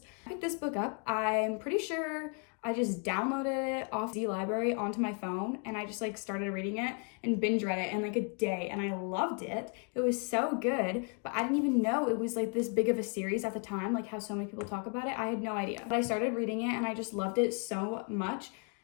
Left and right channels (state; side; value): quieter; right; 38.1 dB